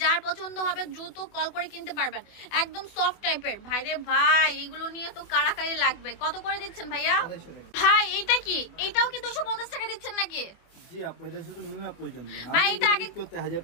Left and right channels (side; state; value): right; late; 25 ms